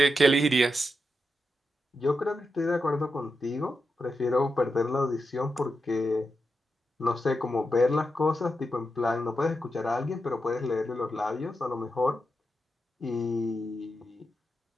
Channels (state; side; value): normal; both; correlation 0.87